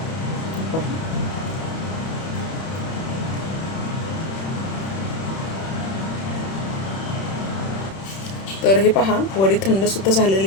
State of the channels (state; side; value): late; right; 31 ms